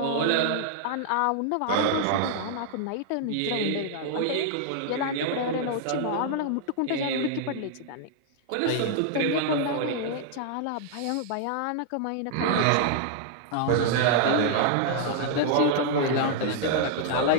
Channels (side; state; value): both; different; correlation -0.01